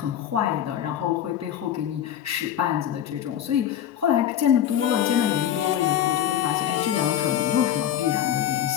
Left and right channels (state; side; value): quieter; right; 10.5 dB